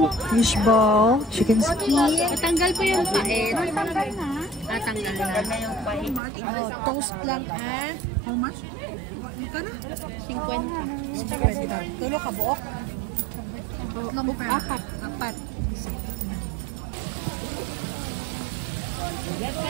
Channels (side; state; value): left; drops out; at 6.2 s